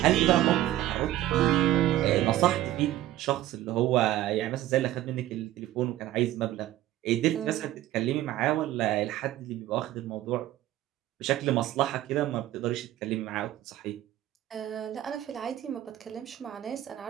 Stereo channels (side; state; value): left; quieter; 14.2 dB